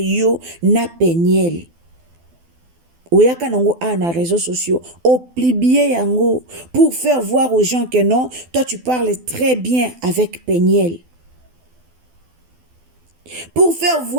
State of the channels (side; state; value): left; late; 12 ms